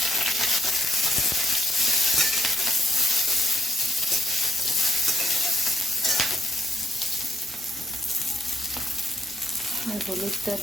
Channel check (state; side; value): normal; both; correlation 0.79